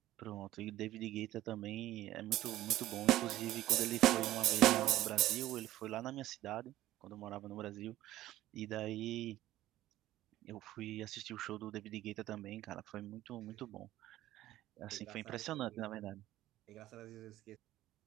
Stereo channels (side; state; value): left; quieter; 14.8 dB